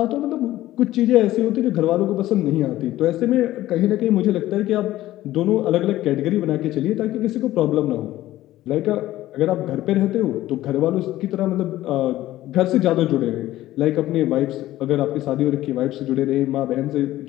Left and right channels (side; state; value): right; quieter; 15.1 dB